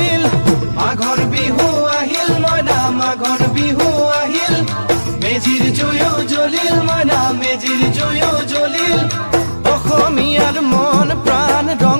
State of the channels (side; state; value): both; inverted; correlation -1.00